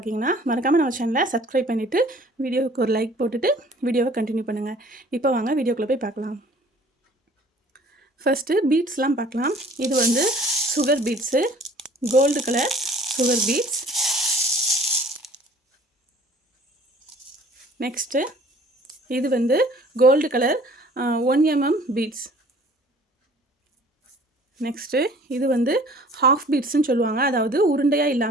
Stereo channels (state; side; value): normal; both; correlation 0.52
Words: மறக்காமல் நம்ம சேனலை சப்ஸ்கிரைப் பண்ணிவிட்டு வீடியோவுக்கு ஒரு லைக் போட்டுட்டு வீடியோவை கண்டினியூ பண்ணுங்கள். இப்போ வாங்க வீடியோக்குள்ளே போய் பார்க்கலாம். ஃபஸ்ட்டு பீட்ஸ்லாம் பார்க்கலாம். இது வந்து sugar beads, gold colour sugar beads. Next இது வந்து gold colour 1 mm beads. Next இது வந்து ஹாஃப் பீட்ஸ்ன்னு சொல்லுவாங்க. அதாவது உருண்டையாக